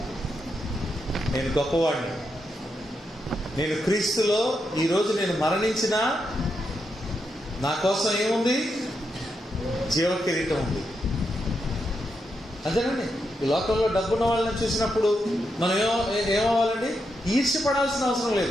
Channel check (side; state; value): both; normal; correlation 0.83